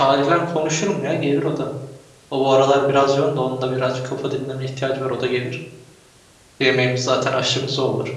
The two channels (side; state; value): both; identical; correlation 1.00